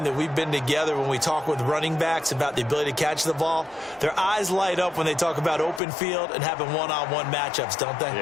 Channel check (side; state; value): right; drops out; at 5.8 s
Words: that we've been together, when we talk with running backs about the ability to catch the ball, their eyes light up when they talk about open field and having one-on-one matchups, don't they?